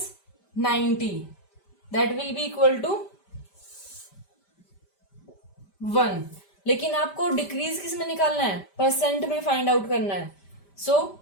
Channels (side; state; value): right; late; 5.1 ms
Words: 90, that will be equal to 1। लेकिन आपको डिक्रीज किस में निकालना है? परसेंट में फाइंड आउट करना है। So